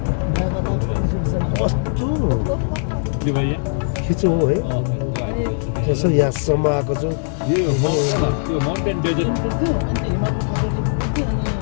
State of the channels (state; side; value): silent; right; digital silence